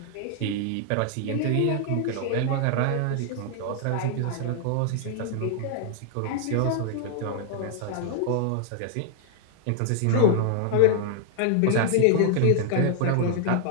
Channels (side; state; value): both; different; correlation 0.00